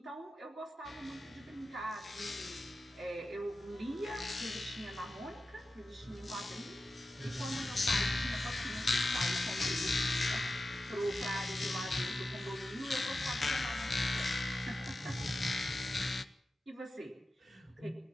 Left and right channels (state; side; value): normal; both; correlation 0.93